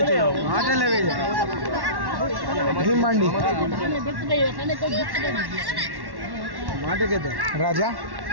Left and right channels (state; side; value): late; left; 1.1 ms